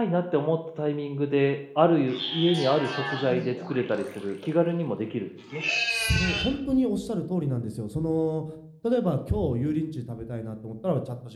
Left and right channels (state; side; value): identical; both; correlation 1.00